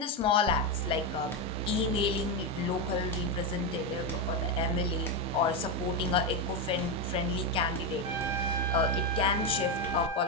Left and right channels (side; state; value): both; normal; correlation 0.09